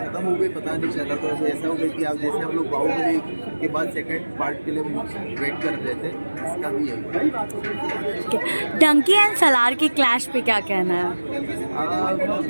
हो गई, पता नहीं चला। तो ऐसा हो गया कि आप जैसे हम लोग बाहुबली के बाद सेकंड पार्ट के लिए वेट कर रहे थे, इसका भी यही। डंकी एंड सलार की क्लैश पे क्या कहना है?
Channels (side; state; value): both; inverted; correlation -1.00